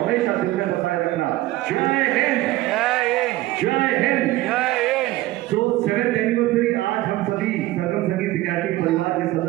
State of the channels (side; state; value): left; quieter; 17.0 dB